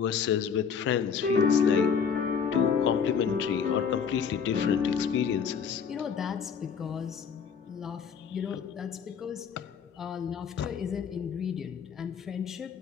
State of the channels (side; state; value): right; quieter; 6.7 dB